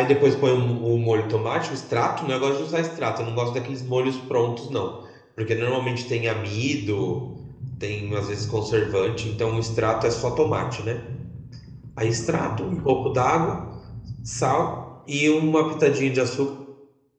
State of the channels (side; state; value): both; identical; correlation 1.00